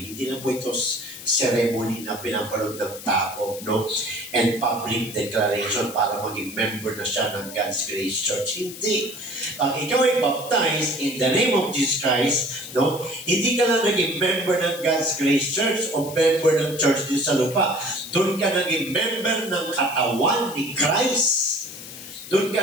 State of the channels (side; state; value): left; noise; hiss, 13 dB below the sound